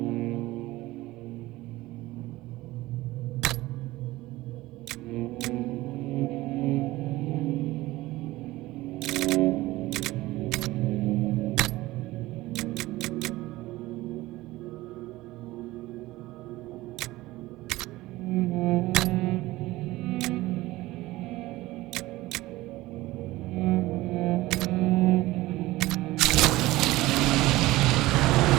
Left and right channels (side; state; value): left; quieter; 18.4 dB